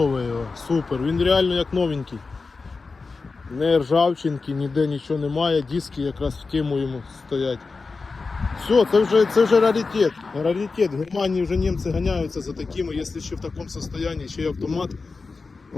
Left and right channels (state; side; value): quieter; right; 4.2 dB